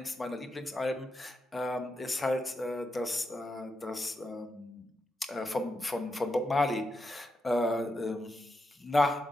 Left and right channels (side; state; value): both; normal; correlation 0.85